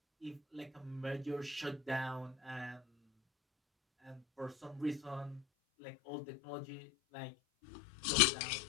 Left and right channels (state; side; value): drops out; right; at 5.5 s